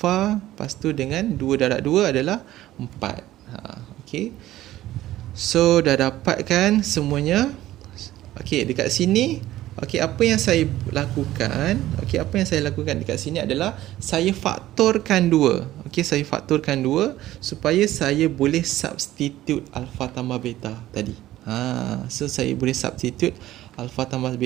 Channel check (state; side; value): quieter; left; 14.7 dB